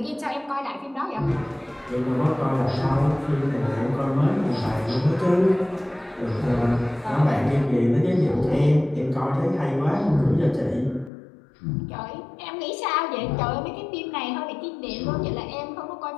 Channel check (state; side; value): drops out; right; at 11.1 s